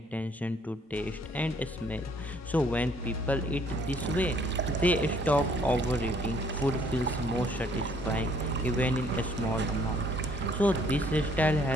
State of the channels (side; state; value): both; normal; correlation 0.62